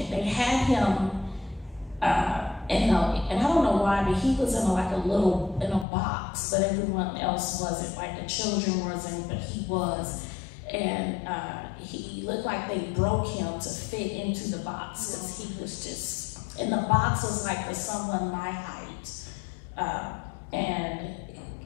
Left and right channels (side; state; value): right; drops out; at 5.9 s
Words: they had him, and I don't know why, but he was in a box, but everyone else wasn't, like the children wasn't, but he was. And he looked like they broke him to fit into the box, because he was just, and the box was like for someone my height. And